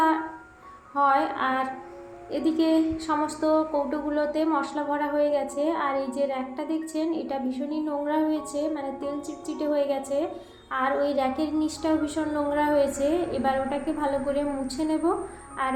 হয়। আর এদিকে সমস্ত কৌটোগুলোতে মশলা ভরা হয়ে গেছে, আর এই যে র্যাকটা দেখছেন এটা ভীষণই নোংরা হয়েছে, মানে তেল চিটচিটে হয়ে গেছে, আর ওই র্যাকের নিচটাও ভীষণ নোংরা হয়েছে। এবার ওটাকে ভালো করে মুছে নেব, আর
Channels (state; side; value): identical; both; correlation 1.00